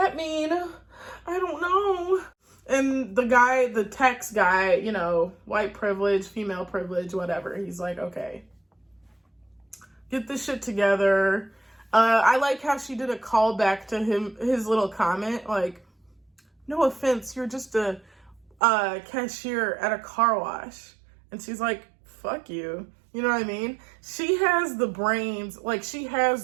mean? I don't know. And the guy, the tax guy, you know, white privilege, female privilege, whatever. He's like, okay, get this shit together. I like how she did a callback to his little comment, like, no offense, you're just a cashier at a car wash. And she's like, fuck you. You know what I mean? She has the brains, like she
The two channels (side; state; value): left; drops out; at 18.6 s